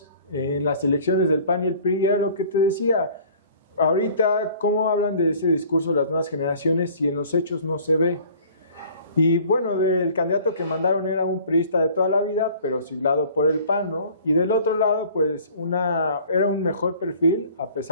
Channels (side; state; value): both; inverted; correlation -0.50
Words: en las elecciones del PAN y el PRI, y era lo que te decía. Ahorita, ¿cómo hablan de ese discurso las nuevas generaciones si en los hechos no se ve? Y bueno, del candidato que mandaron era un priista de toda la vida, pero siglado por el PAN, ¿no? Y del otro lado, pues era un mejor perfil, a